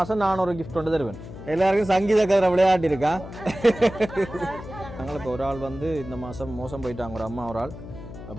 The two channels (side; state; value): left; noise; hum, 13 dB below the sound